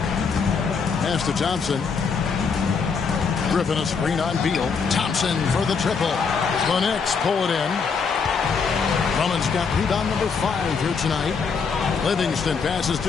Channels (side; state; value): right; quieter; 5.5 dB